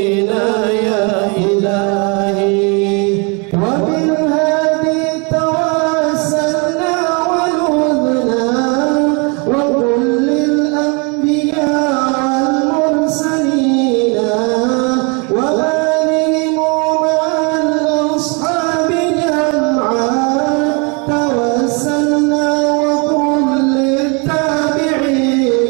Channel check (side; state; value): left; quieter; 32.1 dB